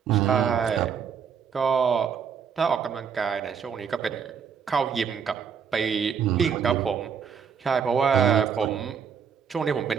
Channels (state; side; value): quieter; left; 7.0 dB